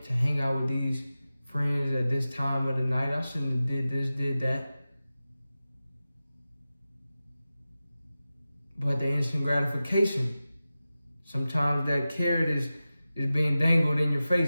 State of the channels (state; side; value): inverted; both; correlation -0.95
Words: to hang out with these friends at this time of the night, I shouldn't have did this, did that. But the instant gratification, sometimes that carrot is being dangled in your face,